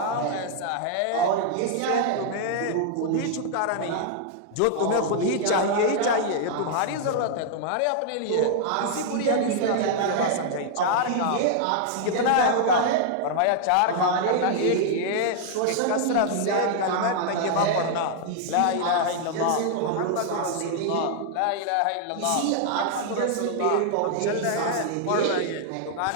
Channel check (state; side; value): different; both; correlation 0.00